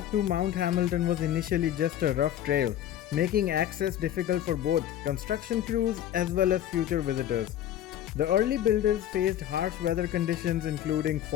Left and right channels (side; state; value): right; quieter; 11.3 dB